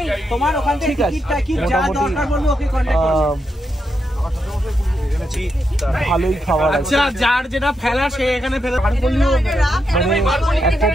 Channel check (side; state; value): both; normal; correlation 0.83